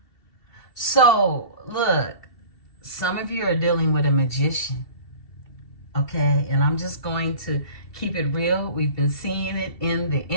So, look, some of you are dealing with a magician, okay? And I'm just going to keep it real. We've been seeing it in the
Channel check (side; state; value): right; late; 2.7 ms